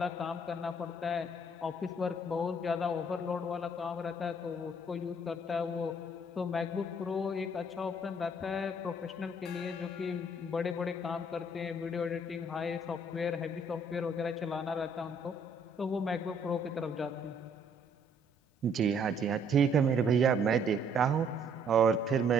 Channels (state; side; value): normal; both; correlation 0.63